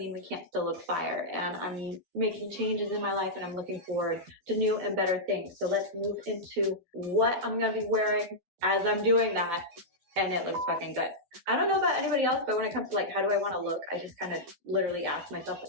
we can't still look fire. And I'm making changes in my life and I'm looking forward to new and better things. So let's move into what I'm gonna be wearing as I'm doing that, and it looks fucking good. I don't know about anybody else, but when it comes to like, how do I want to look? I just kind of literally ask myself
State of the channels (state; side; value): late; left; 12 ms